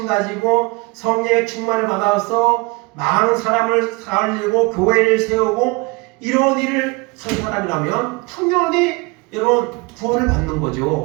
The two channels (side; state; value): left; quieter; 26.8 dB